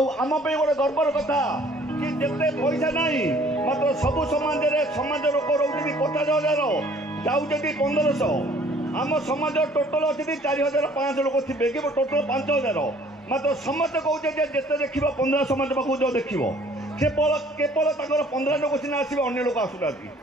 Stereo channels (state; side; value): normal; both; correlation 0.56